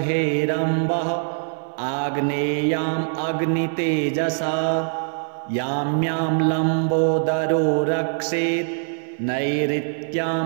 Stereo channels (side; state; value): left; silent; 57 dB below the other